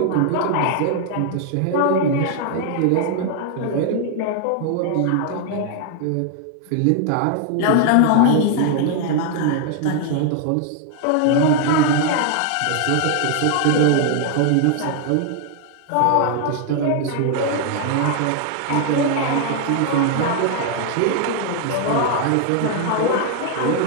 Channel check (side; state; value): both; different; correlation 0.00